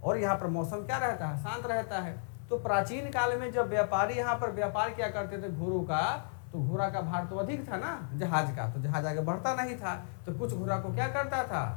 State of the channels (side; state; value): right; silent; digital silence